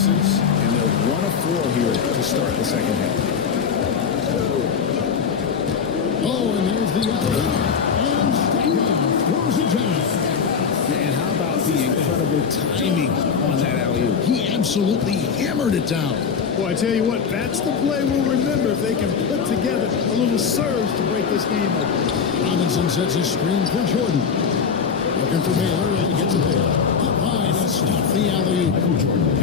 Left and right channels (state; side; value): quieter; right; 6.3 dB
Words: And they're 1 of 4 here to start the second half. Oh, and there's the alley. And Stackhouse throws it down. And how about the incredible timing on that alley-oop? He absolutely hammered it down. Well, I tell you what, that's the play we'll remember if they can put together a little surge to break this game open. Robinson sets a screen for Jordan. Looking for Baylor, and he gets it there. Up high to stop the alley-oop.